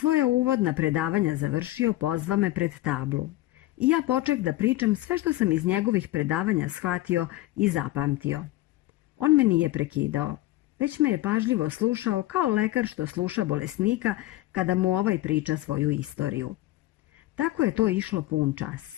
uvodna predavanja završio, pozva me pred tablu. I ja poček da pričam sve što sam iz njegovih predavanja shvatio i zapamtio. On me nije prekidao, već me je pažljivo slušao kao lekar što sluša bolesnika kada mu ovaj priča svoju istoriju. Tako je to išlo pun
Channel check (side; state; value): right; quieter; 16.6 dB